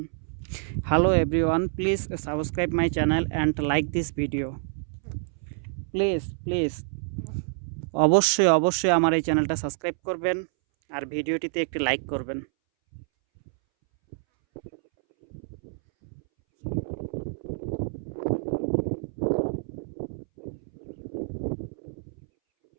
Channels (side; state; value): left; silent; 60 dB below the other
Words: Hello everyone, please subscribe my channel and like this video. Please অবশ্যই আমার এই চ্যানেলটা সাবস্ক্রাইব করবেন আর ভিডিওটিতে একটি লাইক করবেন।